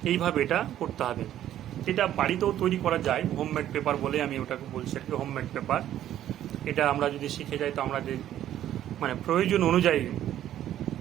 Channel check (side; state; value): left; quieter; 11.8 dB